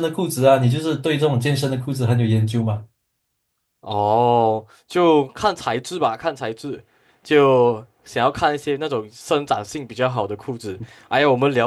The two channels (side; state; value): both; identical; correlation 1.00